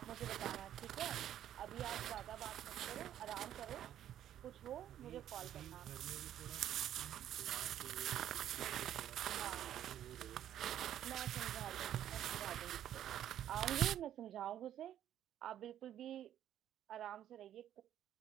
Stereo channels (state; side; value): quieter; left; 11.2 dB